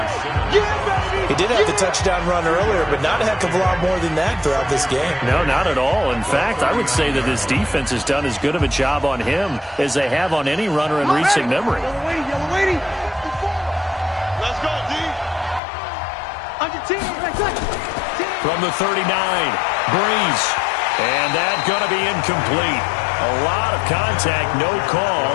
He did have the touchdown run earlier, but not a heck of a lot more than that throughout this game. No, not at all. In fact, I would say that this defense has done as good of a job on him as they have on any runner in recent memory. Let's go, D. From the 39, Brees. And that's going to be incomplete. A lot of contact, no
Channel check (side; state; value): right; drops out; at 15.6 s